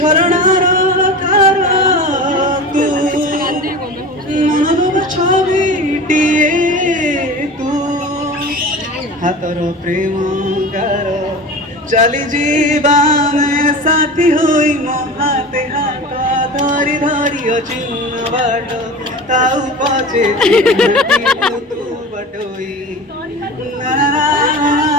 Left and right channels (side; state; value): both; normal; correlation 0.33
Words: ধার তু মনর ছবিটিয়ে তু হাতর প্রেম গার চালি জীবানে সাথী হই মো হাতে হাত ধরি ধরি অচিহ্ন বাট তাও পচে তু বটই না না